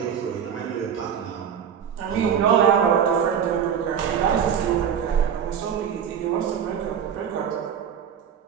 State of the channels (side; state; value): left; quieter; 8.2 dB